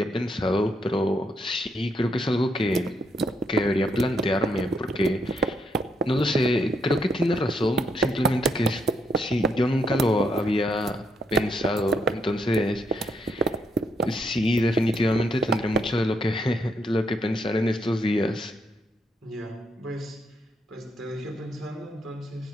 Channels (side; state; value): both; normal; correlation 0.76